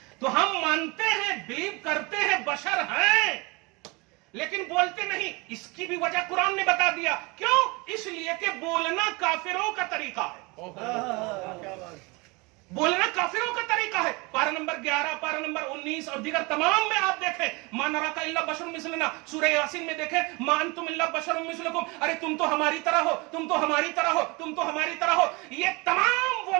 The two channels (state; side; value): quieter; left; 26.6 dB